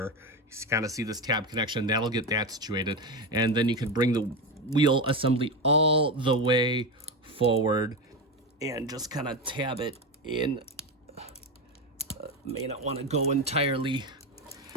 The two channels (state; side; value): normal; both; correlation 0.16